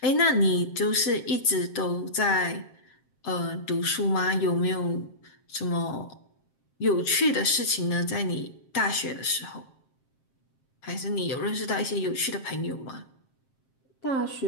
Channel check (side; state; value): right; late; 7.6 ms